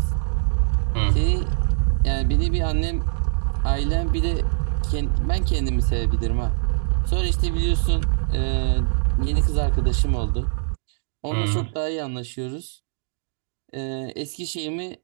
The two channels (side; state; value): left; silent; digital silence